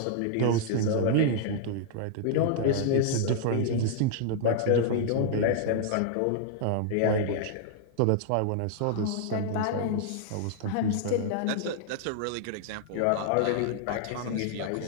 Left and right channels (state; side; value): different; both; correlation -0.01